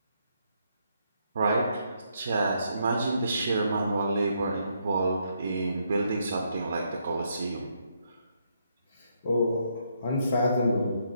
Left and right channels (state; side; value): inverted; both; correlation -0.75